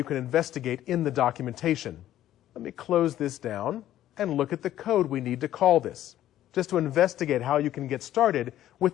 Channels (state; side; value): quieter; right; 12.7 dB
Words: can investigate in the documentation. Let me close this down and look at the code we need to call this, just to investigate how you can get started